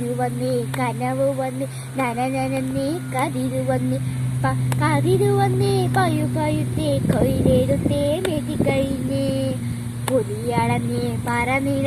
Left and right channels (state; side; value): identical; both; correlation 1.00